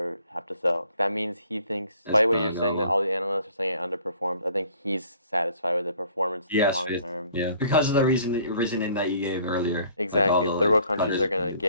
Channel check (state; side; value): inverted; both; correlation -0.57